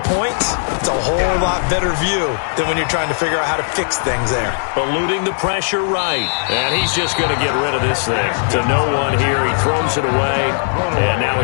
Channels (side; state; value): right; silent; digital silence